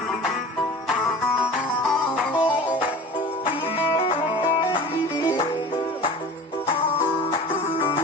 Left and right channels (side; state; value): both; normal; correlation 0.39